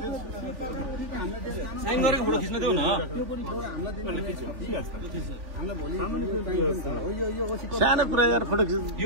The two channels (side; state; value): left; late; 3.4 ms